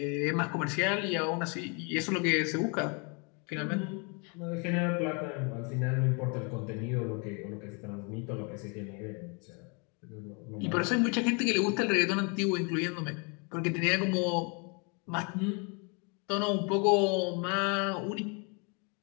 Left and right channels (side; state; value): right; quieter; 33.6 dB